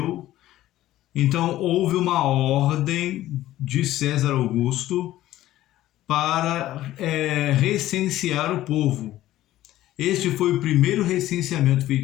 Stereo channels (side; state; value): right; quieter; 14.5 dB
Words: então houve uma ordem de César Augusto para recensear o povo. Este foi o primeiro recenseamento